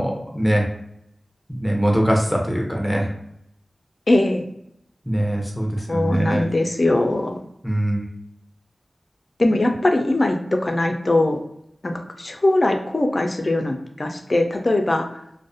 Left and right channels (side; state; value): both; normal; correlation 0.97